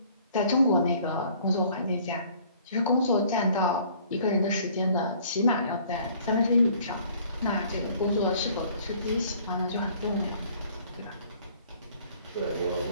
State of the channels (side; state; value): both; inverted; correlation -0.56